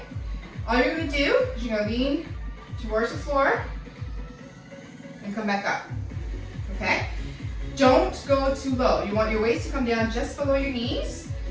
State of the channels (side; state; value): both; identical; correlation 1.00